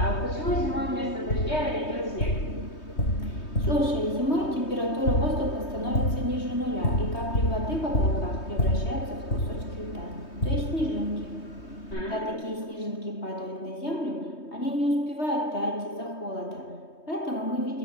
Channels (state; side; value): late; right; 3.2 ms